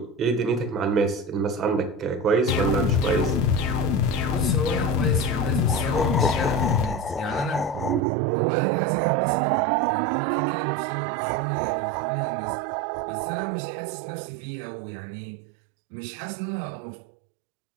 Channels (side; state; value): left; drops out; at 8.0 s